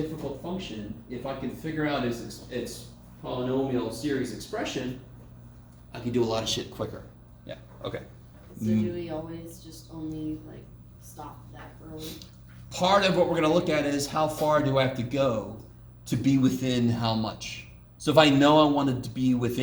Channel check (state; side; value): identical; both; correlation 1.00